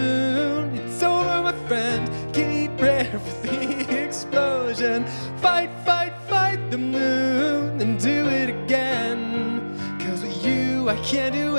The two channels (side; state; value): both; inverted; correlation -1.00